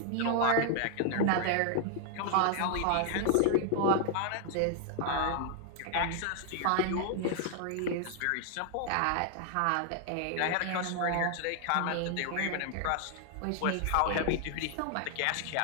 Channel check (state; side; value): different; both; correlation 0.00